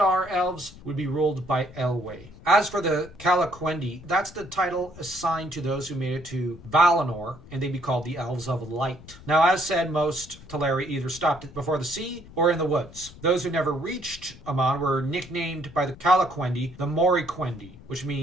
elves would be ruled by Elwë. As for the Calaquendi, that's the title assigned to those who made it to Valinor, and they'd be called the Elves of Light. Now, as said, most Teleri either stopped before the sea or in the woods. Those who never reached Aman were nicknamed by the Calaquendi the Moriquendi, which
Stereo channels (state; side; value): noise; left; rumble, 19 dB below the sound